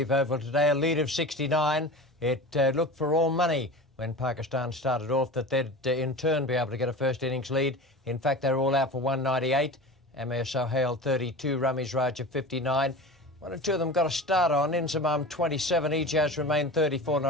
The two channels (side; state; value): both; normal; correlation 0.32